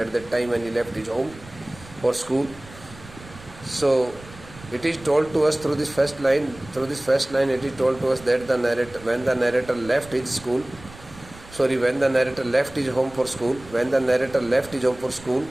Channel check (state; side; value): noise; right; rumble, 19 dB below the sound